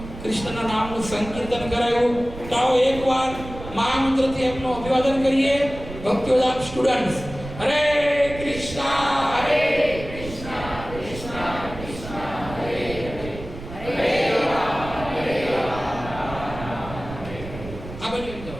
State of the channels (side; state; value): right; noise; rumble, 12 dB below the sound